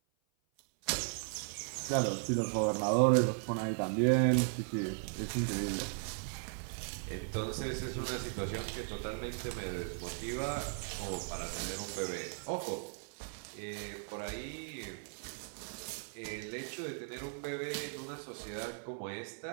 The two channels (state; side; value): silent; left; 53 dB below the other